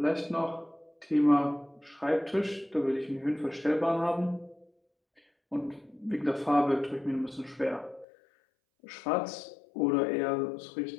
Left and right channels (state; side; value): drops out; right; at 8.1 s